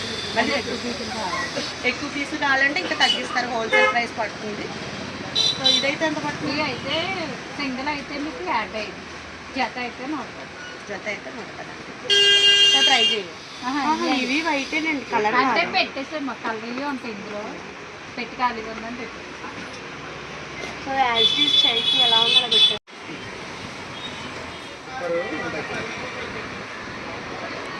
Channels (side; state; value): both; identical; correlation 1.00